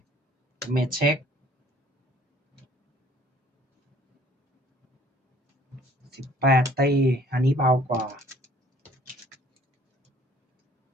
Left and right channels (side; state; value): both; normal; correlation 0.56